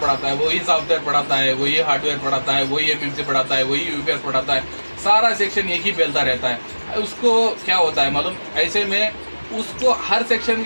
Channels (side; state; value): both; inverted; correlation -1.00